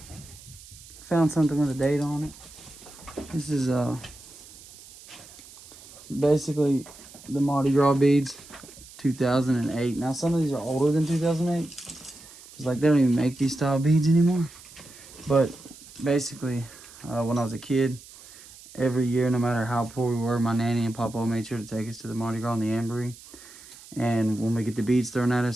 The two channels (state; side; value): noise; right; hiss, 20 dB below the sound